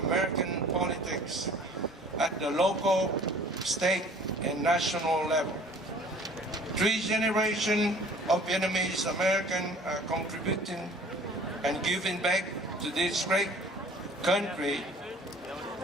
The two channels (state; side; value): normal; both; correlation 0.50